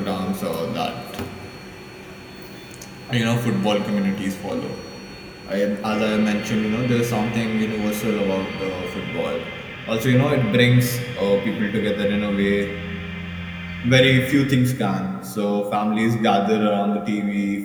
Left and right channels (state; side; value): identical; both; correlation 1.00